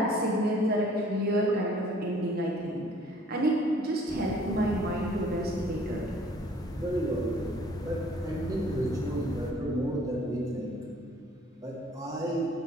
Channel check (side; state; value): both; normal; correlation 0.56